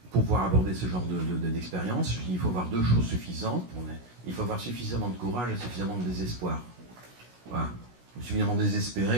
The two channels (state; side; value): late; left; 16 ms